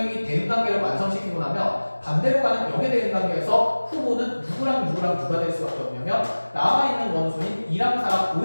대응 관계를 완성시키고 나면 반대로 가는 역의 대응관계에서 후보는 누구랑 누가 될 수밖에 없냐면 남아있는 원소인 2랑 4랑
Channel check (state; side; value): inverted; both; correlation -1.00